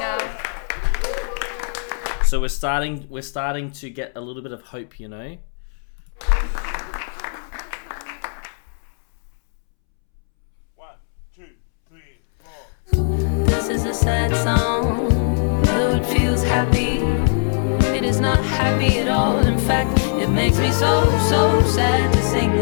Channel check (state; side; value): silent; right; 65 dB below the other